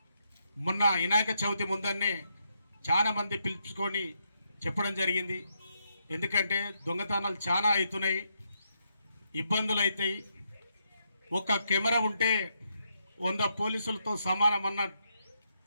మొన్న వినాయక చవితి ముందన్నే చాలా మంది పిలుచుకొని చెప్పడం జరిగింది. ఎందుకంటే దొంగతనాలు చాలా అవుతున్నాయి, ఇబ్బందులు అవుతాయి. ఒక కెమెరా ఉంటే 100 పోలీసులతో సమానం అన్న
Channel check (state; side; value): inverted; both; correlation -0.79